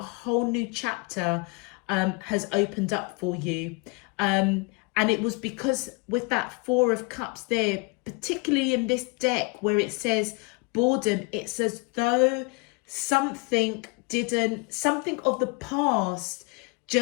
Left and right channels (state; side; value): quieter; right; 29.8 dB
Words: whole new chapter has opened up for you. And it was because with that Four of Cups there, particularly in this deck where it says boredom, it's as though something of the past,